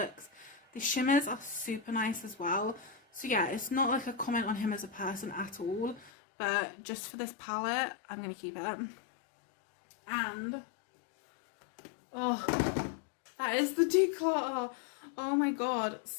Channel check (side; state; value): right; drops out; at 6.1 s